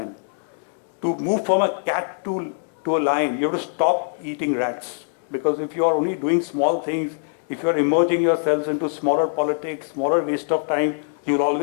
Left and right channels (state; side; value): silent; right; 63 dB below the other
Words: To move from a cat to a lion, you have to stop eating rats. Because if you are only doing small things, if you are immersing yourselves into smaller politics, smaller waste of time, you will